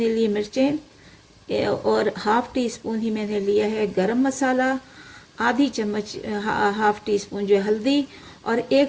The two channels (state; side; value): identical; both; correlation 1.00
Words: लिए मिर्चें, और 1/2 टीस्पून ही मैंने लिया है गरम मसाला, आधी चम्मच 1/2 टीस्पून जो है हल्दी, और